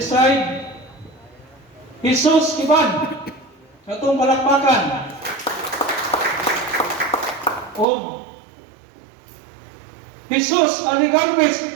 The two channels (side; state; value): left; drops out; at 7.9 s